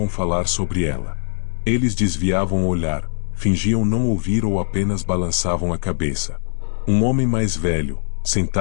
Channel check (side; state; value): right; silent; digital silence